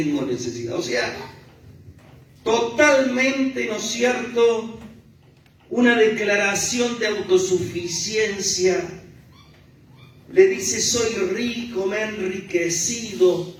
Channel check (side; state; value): both; identical; correlation 1.00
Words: necesidad. O sea, totalmente, ¿no es cierto?, una declaración de autosuficiencia. Le dice, soy rico, me he enriquecido,